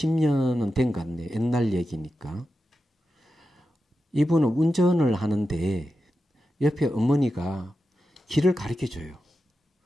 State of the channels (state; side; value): normal; both; correlation 0.90